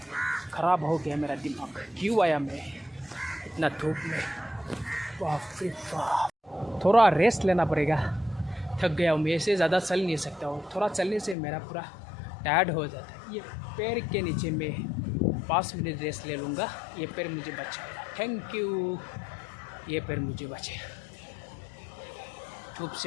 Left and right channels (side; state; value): right; drops out; at 11.4 s